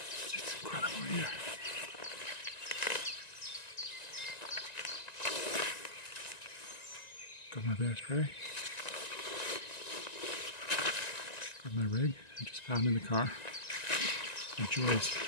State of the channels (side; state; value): right; late; 1.9 ms